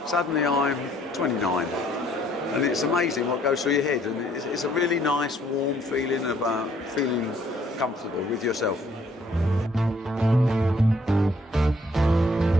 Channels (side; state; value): both; normal; correlation 0.64